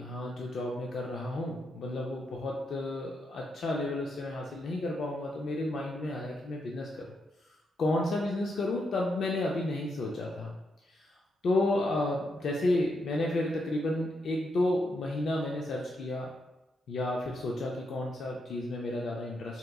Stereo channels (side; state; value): both; normal; correlation 0.81